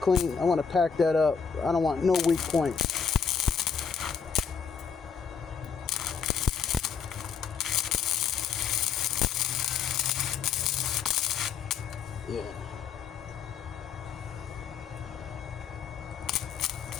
I want to pack that up. I don't want no weak points. Yeah.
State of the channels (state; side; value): quieter; right; 6.5 dB